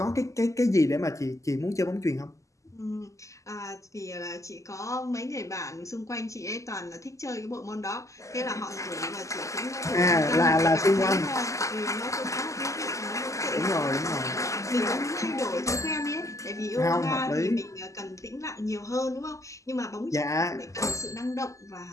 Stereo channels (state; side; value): late; right; 0.16 ms